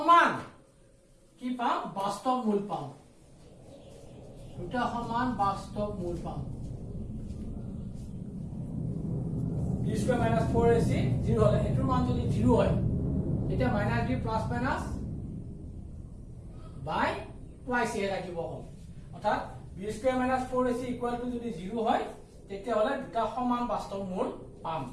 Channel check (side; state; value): both; identical; correlation 1.00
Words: কি পাম বাস্তৱ মূল পাম দুটা সমান বাস্তৱ মূল পাম স্কোয়াৰ মাইনাস 4ac 0 হলে এটোৰ মান যদি 0 হয় তেতিয়া মাইনাস b প্লাস মাইনাস বাই টুৱাইস এ ৰাখিব হ'ল অৰ্থাৎ b square minus 4ac equal to যদি 0 হয় তেতিয়া হলে দুটা সমান বাস্তৱ মূল পাম